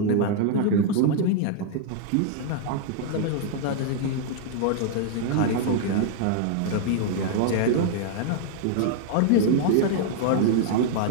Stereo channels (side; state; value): both; different; correlation -0.01